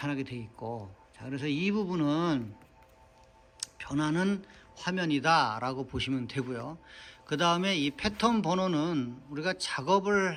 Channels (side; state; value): both; identical; correlation 1.00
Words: 돼 있고 자 그래서 이 부분은 변하는 화면이다 라고 보시면 되고요. 그 다음에 이 패턴 번호는 우리가 작업을